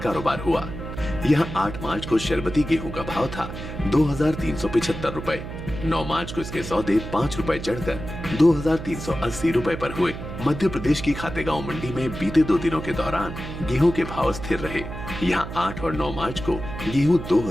कारोबार हुआ। यहाँ 8 मार्च को शरबती गेहूं का भाव था 2,375 रुपए। 9 मार्च को इसके सौदे 5 रुपए चढ़कर 2,380 रुपए पर हुए। मध्य प्रदेश की खातेगांव मंडी में बीते 2 दिनों के दौरान गेहूं के भाव स्थिर रहे। यहाँ 8 और 9 मार्च को गेहूं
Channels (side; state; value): right; noise; hum, 9 dB below the sound